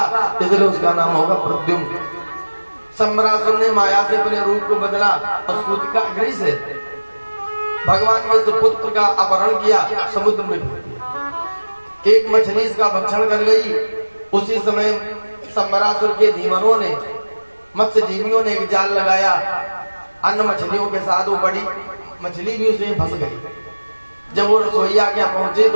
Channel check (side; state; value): both; inverted; correlation -1.00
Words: इसलिए उसका नाम होगा प्रद्युम्न। सम्रासुर ने माया से अपने रूप को बदला और सूतिका गृह से भगवान के सुपुत्र का अपहरण किया, समुद्र में फेंक दिया। एक मछली इसका भक्षण कर गई। उसी समय सम्रासुर के धीमरों ने, मत्स्य जीवियों ने एक जाल लगाया अन्य मछलियों के साथ। वो बड़ी मछली भी उसमें फंस गई। जब वो रसोईया के पहुंचे